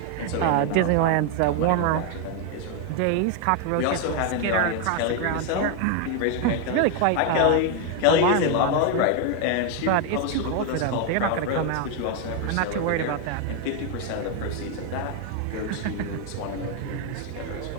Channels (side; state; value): both; different; correlation 0.01